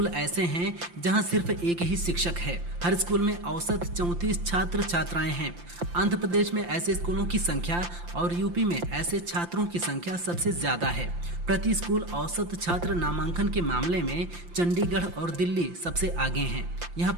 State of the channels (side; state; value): left; late; 5.8 ms